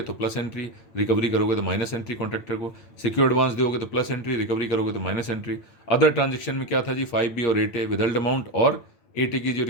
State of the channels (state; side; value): late; right; 8.9 ms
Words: तो प्लस एंट्री, रिकवरी करोगे तो माइनस एंट्री कॉन्ट्रैक्टर को। सिक्योर एडवांस दोगे तो प्लस एंट्री, रिकवरी करोगे तो माइनस एंट्री। अदर ट्रांजेक्शन में क्या था जी, 5B और 8A विदल्ड अमाउंट, और 8A की जो